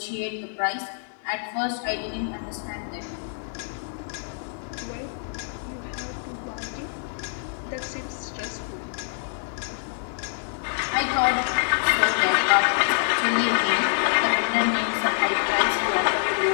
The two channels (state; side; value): silent; right; digital silence